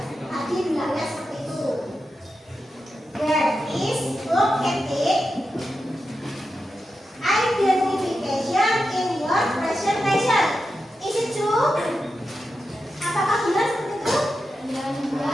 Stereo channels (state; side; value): normal; both; correlation 0.89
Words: Tadi bilangnya seperti itu. Where is located identification in your presentation? Is it true? Apakah benar seperti itu? Ya.